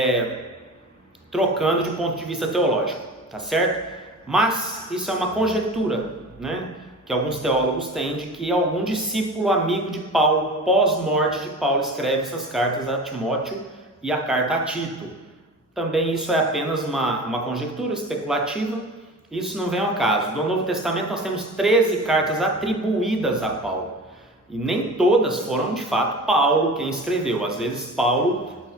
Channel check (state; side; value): normal; both; correlation 0.35